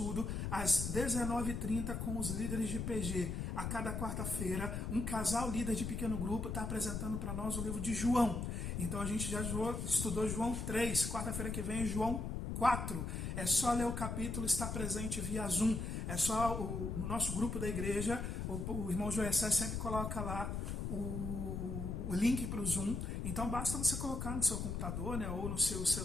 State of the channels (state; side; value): noise; left; rumble, 3 dB below the sound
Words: às 19h30 com os líderes de PG. A cada quarta-feira, um casal líder de pequeno grupo está apresentando para nós o livro de João. Então a gente já estudou João 3, quarta-feira que vem é João 4. É só ler o capítulo, está presente via Zoom. É só no nosso grupo da igreja, o irmão Joessé sempre coloca lá o link para o Zoom. Então basta você colocar no seu computador, né, ou no seu